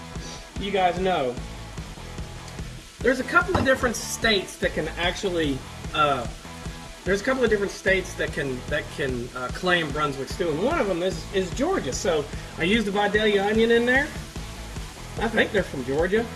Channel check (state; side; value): identical; both; correlation 1.00